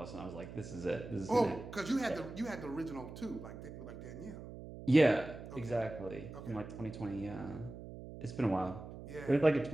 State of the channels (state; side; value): noise; right; hum, 12 dB below the sound